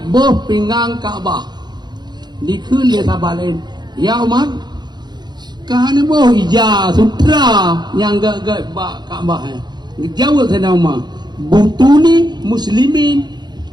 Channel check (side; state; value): left; late; 0.21 ms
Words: boh pinggang Kaabah dikul dia sabar lain ya Umar kahana boh ija sutra yang gak Kaabah jawab Sayyidina Umar butuni muslimin